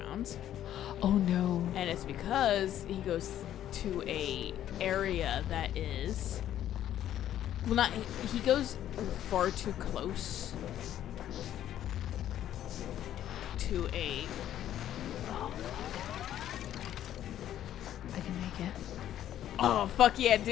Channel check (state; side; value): quieter; right; 11.5 dB